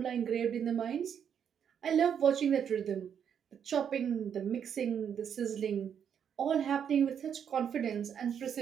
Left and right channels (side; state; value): left; quieter; 8.1 dB